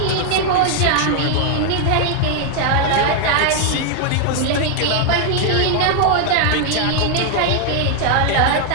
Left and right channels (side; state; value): both; different; correlation 0.00